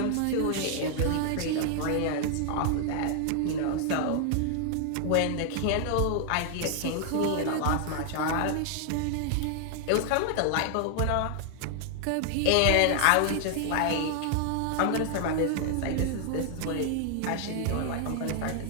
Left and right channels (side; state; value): both; different; correlation 0.00